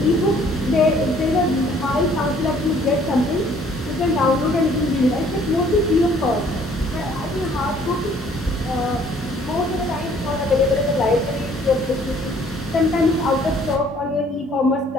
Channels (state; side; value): normal; both; correlation 0.59